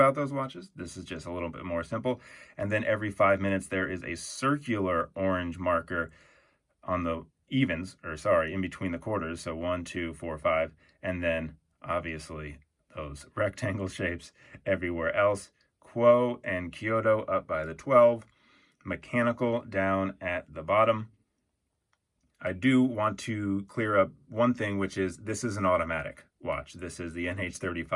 those watches. This is just a little bit more simple. And then every 5 minutes, there is a circular orange marker on the evens, or sorry, in between the quarters. So 1, 2, 4, 5. And then obviously those rectangle shapes everywhere else. KUOE and Kyoto up by the 12. Mechanical down at the bottom. I do want to clear up one thing, which is this is an automatic watch. This is the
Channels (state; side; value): identical; both; correlation 1.00